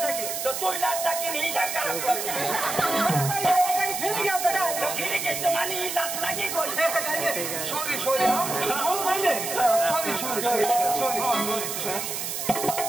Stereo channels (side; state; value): right; noise; hiss, 4 dB below the sound